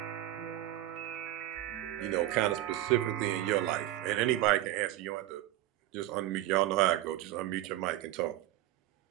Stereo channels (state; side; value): quieter; left; 14.5 dB